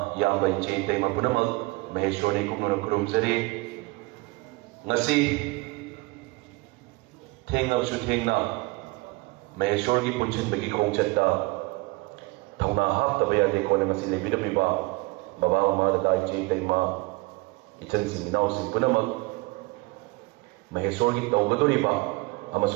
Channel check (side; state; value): left; quieter; 24.1 dB